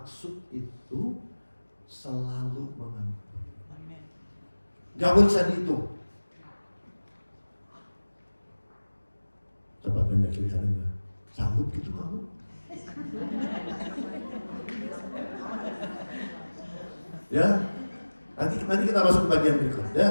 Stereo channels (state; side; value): inverted; both; correlation -1.00